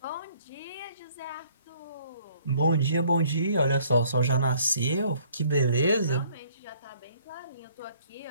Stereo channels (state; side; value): inverted; both; correlation -0.61